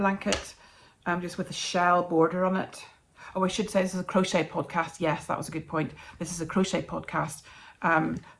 just with a shell border on it. Oh, I should say this is a crochet podcast. Yes, that was a good point. This is a crochet podcast.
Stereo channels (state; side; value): identical; both; correlation 1.00